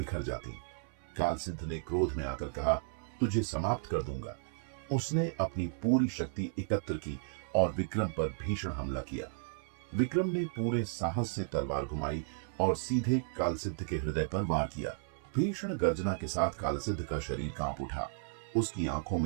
जाती। काल सिद्ध ने क्रोध में आकर कहा, तुझे समाप्त कर दूंगा। उसने अपनी पूरी शक्ति एकत्र की और विक्रम पर भीषण हमला किया। विक्रम ने पूरे साहस से तलवार घुमाई और सीधे काल सिद्ध के हृदय पर वार किया। भीषण गर्जना के साथ काल सिद्ध का शरीर कांप उठा। उसकी आंखों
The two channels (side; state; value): left; silent; 55 dB below the other